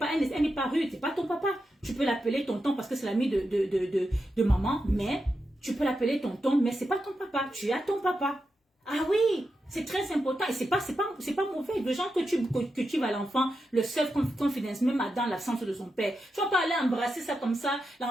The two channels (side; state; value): both; normal; correlation 0.88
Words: pas rude, c'est pas ton papa. Tu peux l'appeler tonton parce que c'est l'ami de maman, mais tu peux l'appeler tonton, mais c'est pas ton papa. Tu as ton papa. Ah oui, c'est très important et c'est pas mauvais. Le genre que tu vas à l'enfant, le self-confidence, même dans l'absence de son père. Tu vas pas aller embrasser ça comme ça,